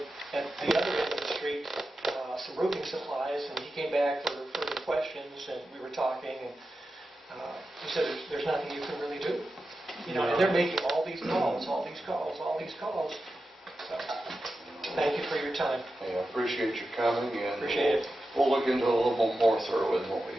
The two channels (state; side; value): normal; both; correlation 0.91